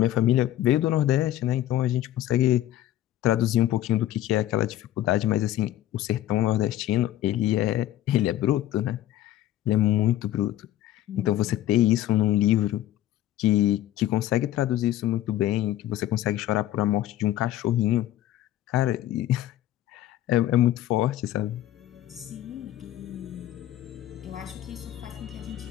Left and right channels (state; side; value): quieter; right; 13.5 dB